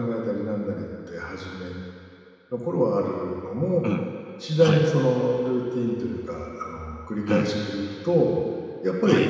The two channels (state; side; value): identical; both; correlation 1.00